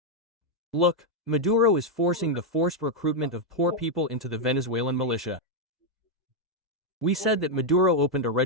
Look, Maduro is forcing the forced recruitment of poor people into the Venezuelan militia. We said that Maduro opened a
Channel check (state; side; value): normal; both; correlation 0.00